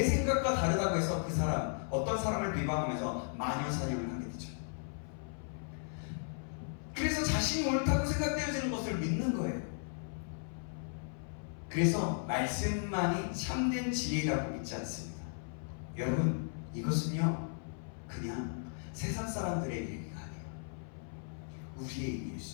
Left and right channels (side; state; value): right; silent; 54 dB below the other